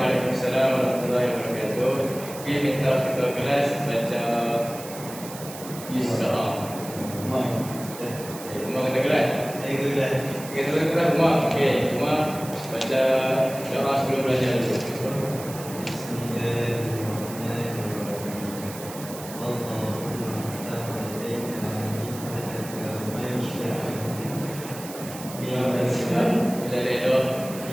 warahmatullahi wabarakatuh. Okey, minta ketua kelas baca Isra. Rumah kena kelas? Saya kelas. Okey, ketua kelas rumah. Okey, rumah baca doa sebelum belajar dulu.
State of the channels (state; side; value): noise; right; hiss, 13 dB below the sound